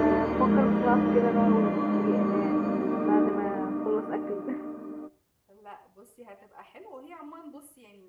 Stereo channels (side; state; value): both; identical; correlation 1.00